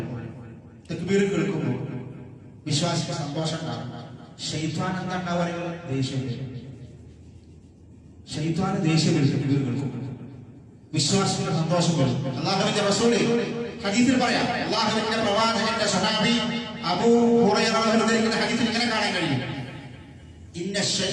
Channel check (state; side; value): identical; both; correlation 1.00